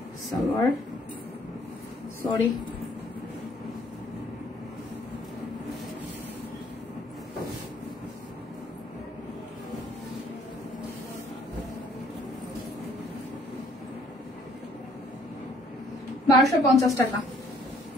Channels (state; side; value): normal; both; correlation 0.63